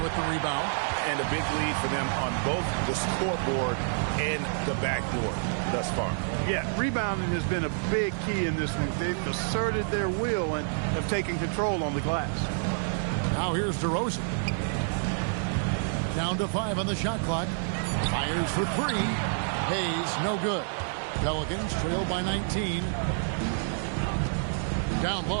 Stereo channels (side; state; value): left; silent; digital silence